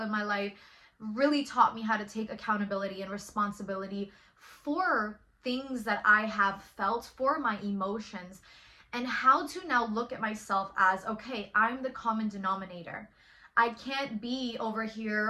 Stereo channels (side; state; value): both; identical; correlation 1.00